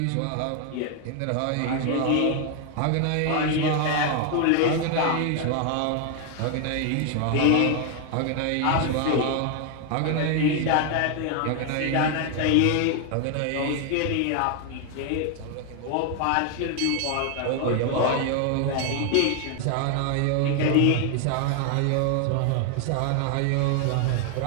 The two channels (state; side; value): different; both; correlation 0.00